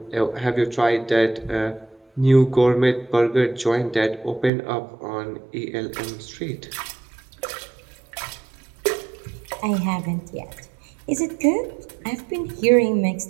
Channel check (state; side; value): drops out; left; at 4.5 s